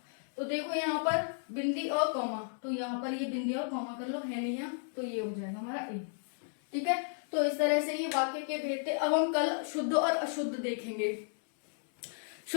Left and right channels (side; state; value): right; silent; digital silence